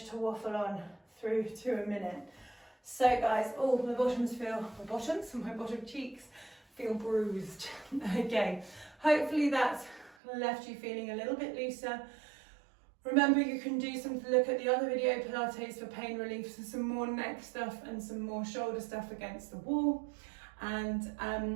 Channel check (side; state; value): left; drops out; at 10.2 s